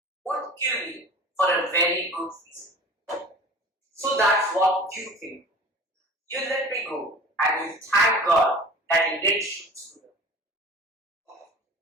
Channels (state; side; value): normal; both; correlation 0.41